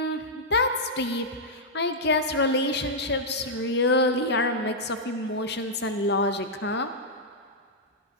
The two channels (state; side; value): normal; both; correlation -0.07